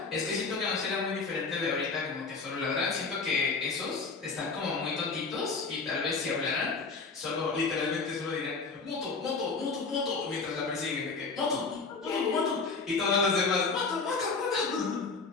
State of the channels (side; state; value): right; quieter; 4.4 dB